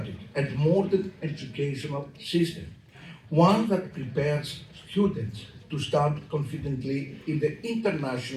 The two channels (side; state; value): both; identical; correlation 1.00